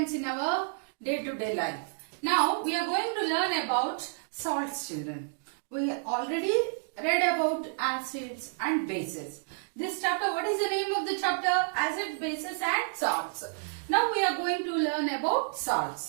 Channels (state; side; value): silent; left; digital silence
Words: in our day-to-day life. Now we are going to learn about salts children. We already read about acids and bases. This chapter, what is the name of the chapter? Acids, bases and salts. Now we are going to learn about